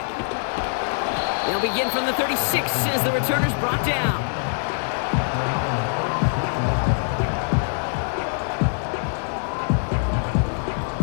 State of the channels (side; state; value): right; silent; 63 dB below the other